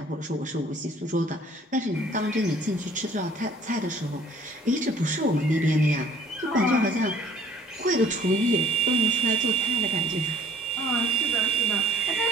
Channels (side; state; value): both; normal; correlation 0.56